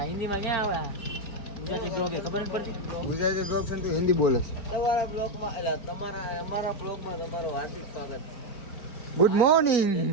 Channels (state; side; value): late; right; 4.5 ms